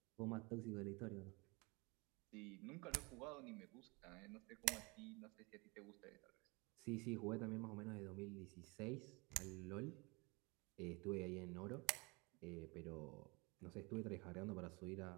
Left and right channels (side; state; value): left; quieter; 27.7 dB